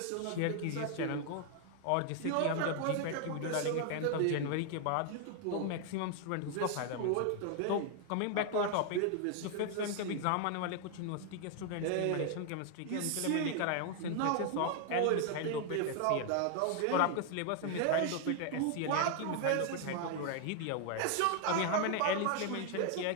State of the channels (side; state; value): both; different; correlation 0.00